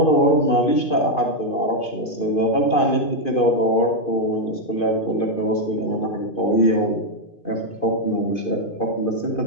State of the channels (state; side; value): late; right; 2.5 ms